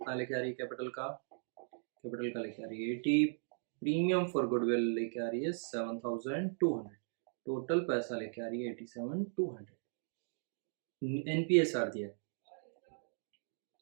लेके आ रही है कैपिटल का लेके आ रही है 80। प्रीमियम फॉर गुडविल लेके आ रही है 7,200। टोटल पैसा लेके आ रही है 87,200। एनपीएसआर दिया है,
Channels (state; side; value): silent; left; digital silence